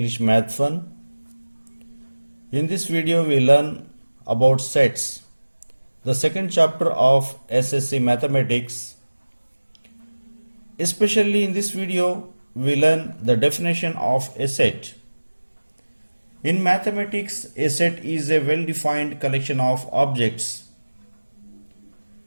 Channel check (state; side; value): inverted; both; correlation -1.00